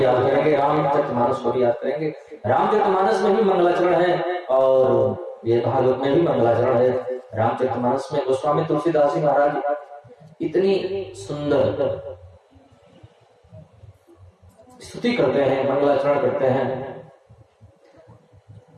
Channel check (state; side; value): identical; both; correlation 1.00